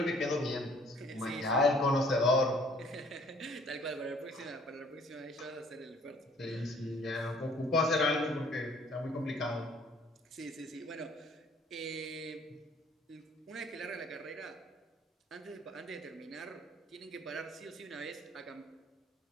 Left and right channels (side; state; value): both; normal; correlation 0.57